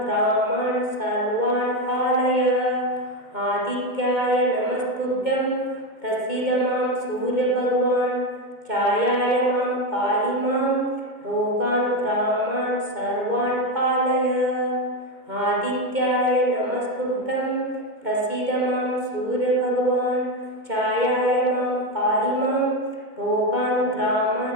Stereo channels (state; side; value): late; left; 2.2 ms